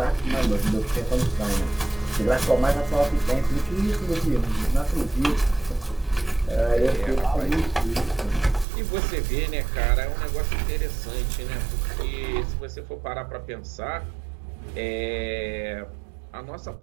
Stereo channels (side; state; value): left; drops out; at 8.7 s